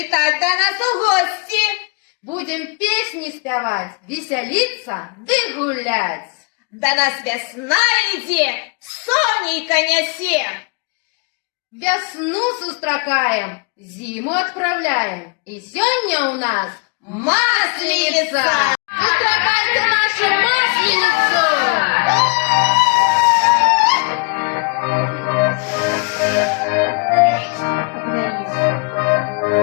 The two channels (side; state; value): right; quieter; 32.8 dB